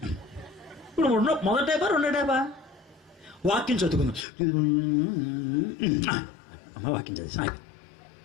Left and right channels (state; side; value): drops out; right; at 4.2 s